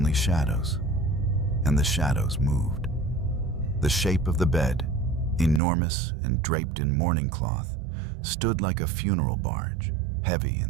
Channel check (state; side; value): drops out; left; at 5.6 s